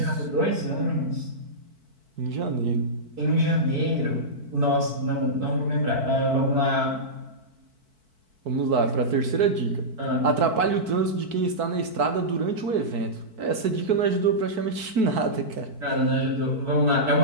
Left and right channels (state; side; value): late; left; 4.5 ms